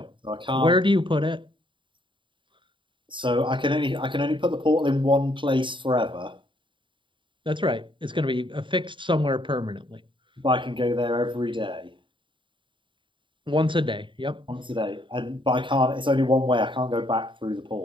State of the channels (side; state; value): left; late; 0.24 ms